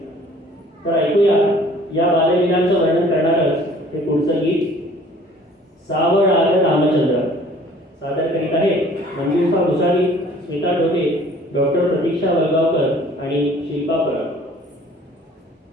तर ऐकूया या बाललीलांचं वर्णन करणारच हे पुढचं गीत. सावळ आलं रामचंद्र. सादर करीत आहे मंजुषा भुसारी, स्मिता डोके, डॉक्टर प्रतीक्षा वलगावकर आणि शिल्पा पराग.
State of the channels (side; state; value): both; normal; correlation 0.53